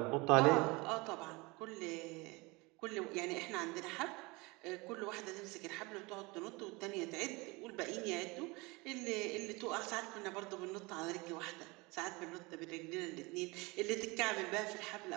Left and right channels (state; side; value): quieter; left; 24.9 dB